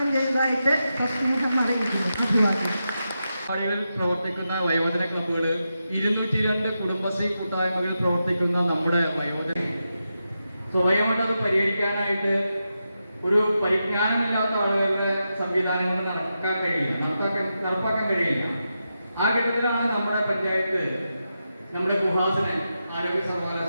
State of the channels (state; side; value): inverted; both; correlation -0.88